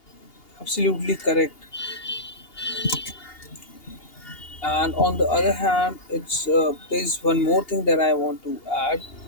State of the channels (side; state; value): right; late; 2.8 ms